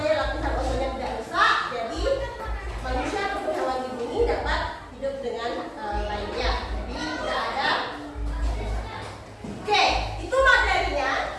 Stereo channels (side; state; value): both; identical; correlation 1.00